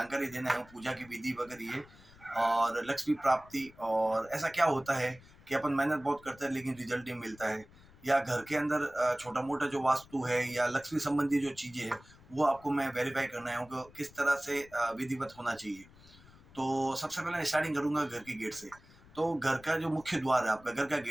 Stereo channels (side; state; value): left; noise; rumble, 24 dB below the sound